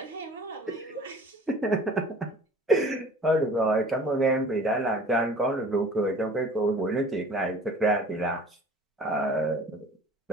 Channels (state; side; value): normal; both; correlation 0.46